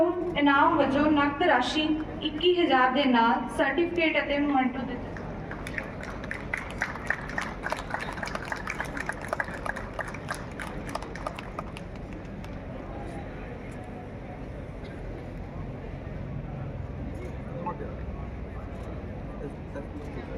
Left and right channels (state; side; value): identical; both; correlation 1.00